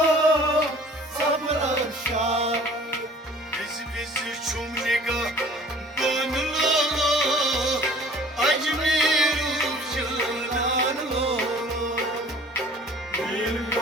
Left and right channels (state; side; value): normal; both; correlation 0.50